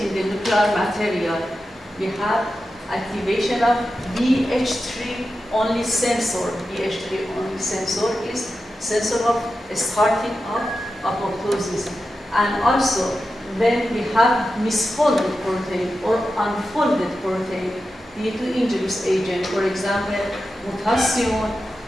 the nuclear material. We have activation of BH3 only sensor. BH3 only sensor is sensor of starting of apoptosis. And also, when we have misfolded protein or unfolded protein due to injurious agent, for example, mutation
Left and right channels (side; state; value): both; normal; correlation 0.91